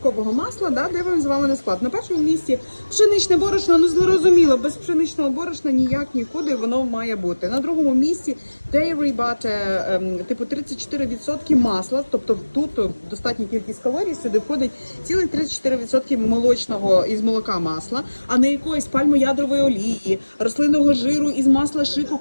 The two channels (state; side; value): inverted; both; correlation -1.00